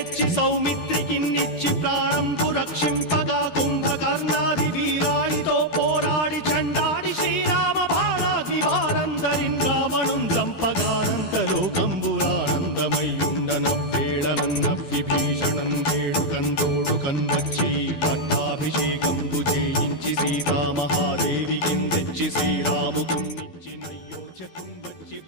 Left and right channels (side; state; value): right; late; 12 ms